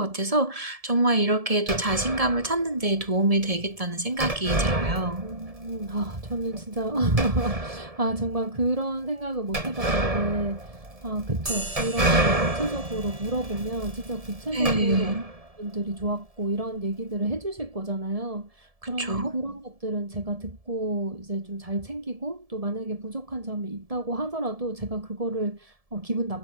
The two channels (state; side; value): late; left; 1.7 ms